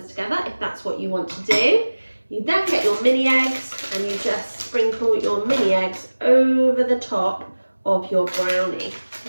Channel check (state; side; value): inverted; both; correlation -1.00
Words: together, if that's what you want to do, you then get your mini eggs and you just sprinkle your mini eggs over the top of your brownie,